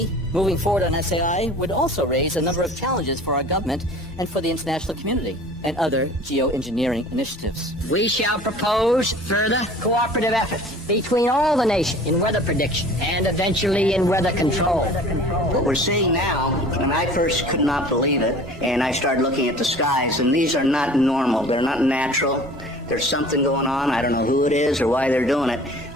moving forward on SAI would also raise a number of challenges for our government and for the international community and other geoengineering initiatives. We shall propose further cooperative efforts between all the nations in weather prediction and eventually in weather control. What we're seeing now, and I first could not believe it, and I started looking at the skies, and these are not normal, they're not natural. There's something going on. I don't know who it is or why they're doing it.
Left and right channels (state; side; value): normal; both; correlation 0.45